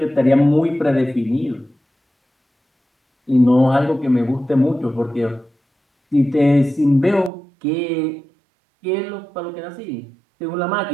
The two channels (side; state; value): left; drops out; at 7.3 s